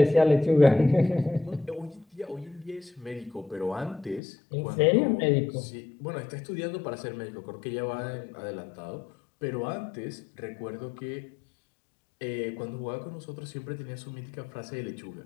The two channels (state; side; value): drops out; right; at 4.2 s